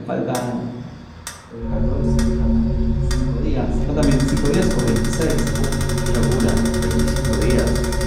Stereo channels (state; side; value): identical; both; correlation 1.00